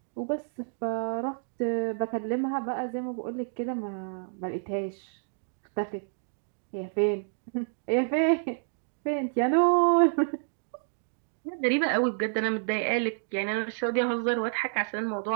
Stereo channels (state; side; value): silent; left; digital silence